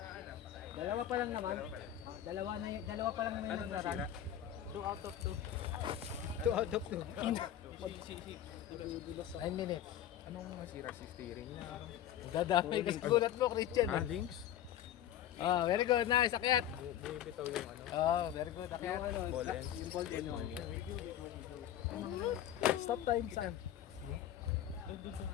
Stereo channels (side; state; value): right; quieter; 11.2 dB